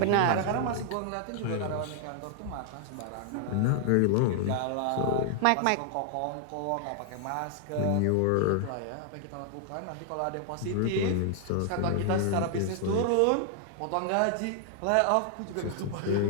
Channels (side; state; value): both; different; correlation 0.00